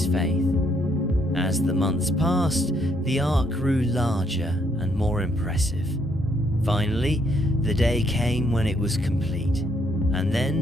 faith. As the months passed, the ark grew larger and more impressive. Finally, the day came when it was complete, and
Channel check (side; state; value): both; normal; correlation 0.72